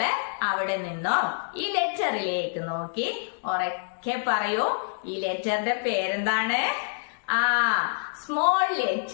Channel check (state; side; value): silent; right; digital silence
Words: അവിടെ നിന്നും ഈ ലെറ്ററിലേക്ക് നോക്കി ഉറക്കെ പറയൂ. ഈ ലെറ്ററിന്റെ പേരെന്താണ്? Small